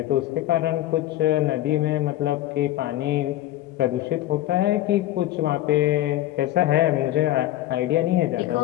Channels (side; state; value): right; quieter; 14.5 dB